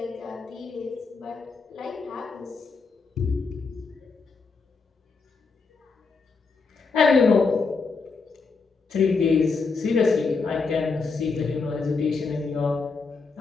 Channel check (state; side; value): quieter; right; 4.6 dB